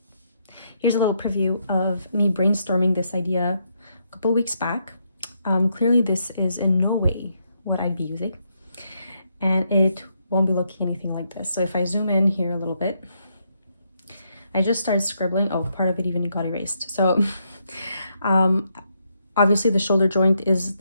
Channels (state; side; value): inverted; both; correlation -0.78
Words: Here's a little preview of me brainstorming this idea a couple weeks back. Clearly this is in no way what I'd be using, and it won't be looking anything like this. So if I zoom in here a little bit, I just started scribbling. Oh, part of it even got erased. So obviously the shoulder joint is